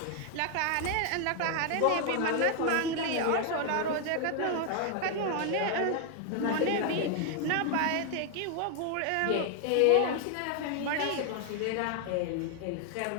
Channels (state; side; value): different; both; correlation 0.00